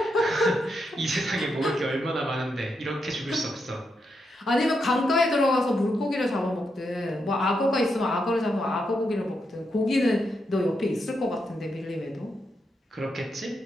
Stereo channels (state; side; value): normal; both; correlation 0.83